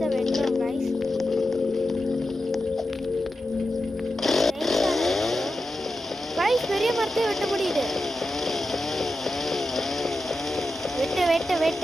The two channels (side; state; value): both; normal; correlation 0.91